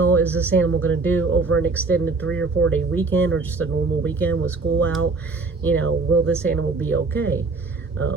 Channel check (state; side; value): quieter; left; 3.9 dB